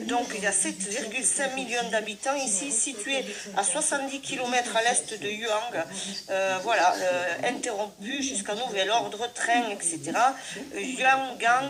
il y a 7,5 millions d'habitants ici, situés à 70 km à l'est de Yuang. Voilà, interrompu jusqu'à nouvel ordre, train, etc.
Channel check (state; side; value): identical; both; correlation 1.00